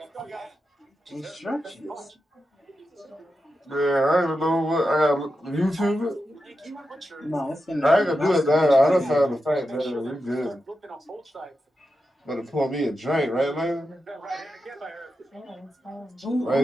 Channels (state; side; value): normal; both; correlation 0.89